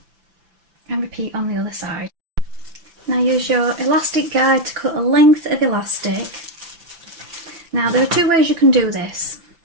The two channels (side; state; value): left; late; 5.9 ms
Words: And repeat on the other side. Now use your elastic guide to cut a length of elastic. Now there are 2 ways you can do this.